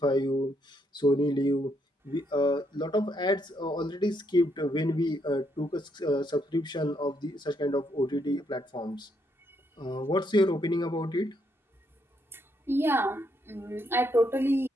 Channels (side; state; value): both; normal; correlation 0.75